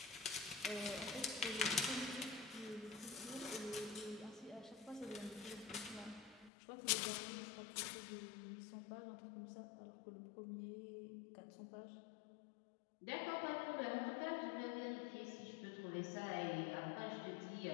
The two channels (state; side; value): drops out; right; at 6.5 s